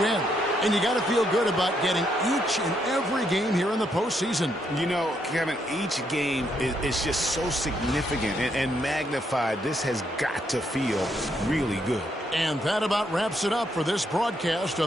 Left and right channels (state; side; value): normal; both; correlation 0.76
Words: And you got to feel good about getting each and every game here in the postseason. You know, Kevin, each game is just so significant and magnified. This has got to feel really good. And that about wraps it up for this broadcast